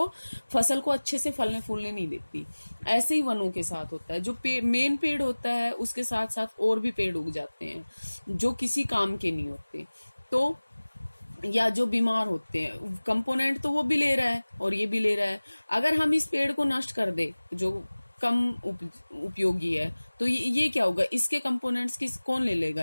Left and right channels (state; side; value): inverted; both; correlation -1.00